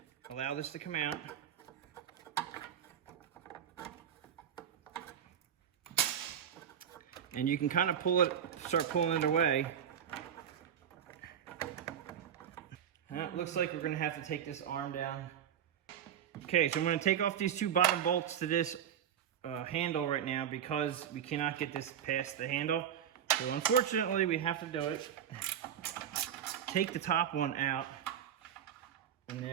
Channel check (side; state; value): left; quieter; 9.1 dB